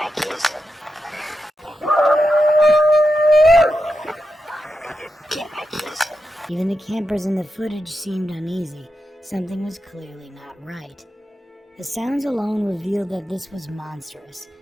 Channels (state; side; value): normal; both; correlation 0.88